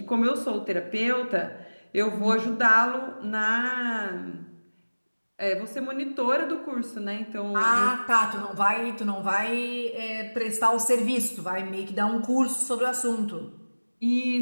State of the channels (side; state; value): both; inverted; correlation -1.00